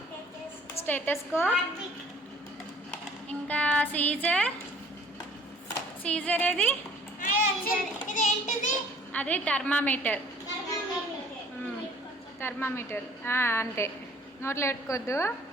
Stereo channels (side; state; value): both; normal; correlation 0.54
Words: స్టెటస్కోప్ ఇంకా సీజర్ ఏది? అది థర్మామీటర్. అంతే, నోట్లో పెట్టుకోవద్దు.